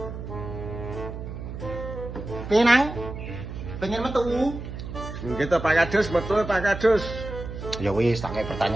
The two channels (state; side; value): noise; right; hum, 9 dB below the sound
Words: Penang, pengen metu. Gitu Pak Kadus, betul Pak Kadus. Ya wis, tak kayak